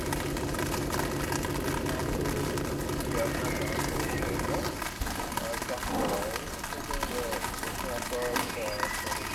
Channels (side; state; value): both; identical; correlation 1.00